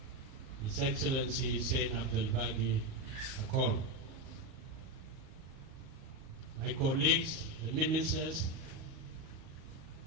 His Excellency Hussein Abdelbagi Akol, my colleagues, the ministers,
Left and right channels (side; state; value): left; late; 38 ms